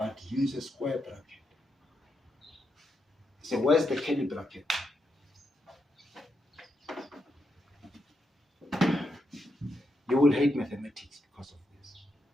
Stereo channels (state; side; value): normal; both; correlation 0.83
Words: use a square bracket. So where's the curly bracket? You will hate mathematics because of this.